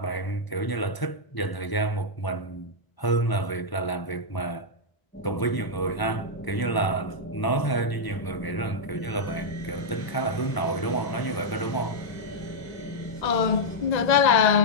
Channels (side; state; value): right; late; 1.0 ms